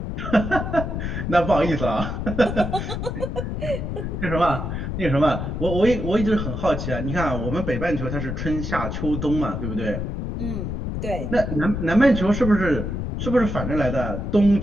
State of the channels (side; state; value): left; noise; rumble, 4 dB below the sound